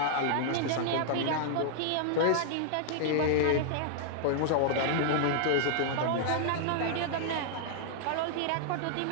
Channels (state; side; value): different; both; correlation -0.01